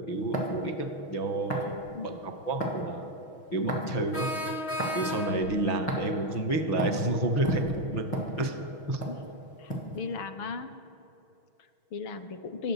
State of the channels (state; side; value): late; right; 6.3 ms